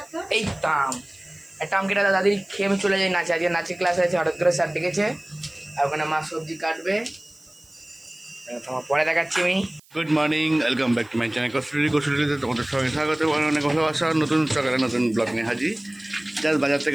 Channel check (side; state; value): right; noise; hiss, 29 dB below the sound